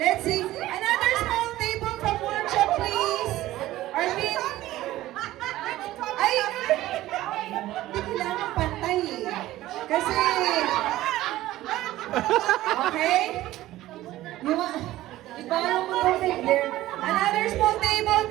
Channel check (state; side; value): quieter; left; 15.6 dB